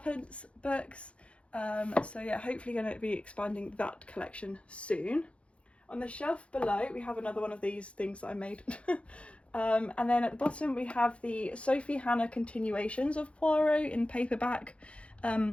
books. So yeah, hopefully going to be expanding that collection soon. On the shelf below we have another one of these things that I made. And then at the bottom we have the Sophie Hannah continuations of Poirot in paperback.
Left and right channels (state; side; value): late; right; 0.061 ms